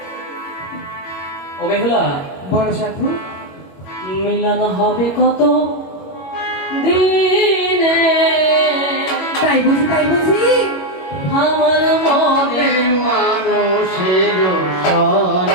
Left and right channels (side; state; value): right; late; 21 ms